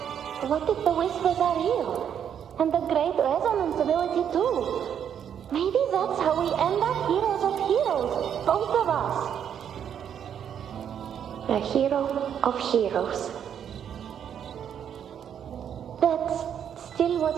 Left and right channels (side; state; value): left; quieter; 8.7 dB